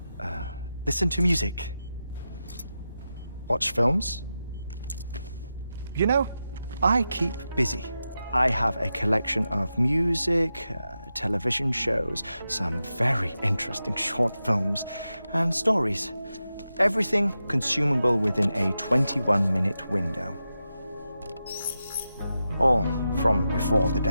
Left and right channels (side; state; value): both; inverted; correlation -0.90